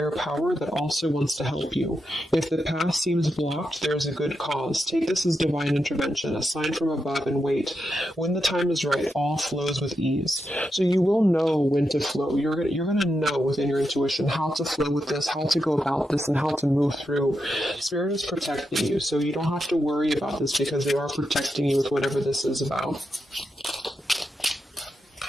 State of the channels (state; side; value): normal; both; correlation 0.86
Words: power that also wants to help you. If the path seems blocked, there is a good cause. Take this as divine intervention, a sign from above, and wait. When the time is right, all flows with ease. So you will know when to flow. You're going to know within your intuition how to flow with this, how to go about this, and how to move through. Spirit is protecting you, so you don't have to worry about this because they are protecting you with whatever this is about.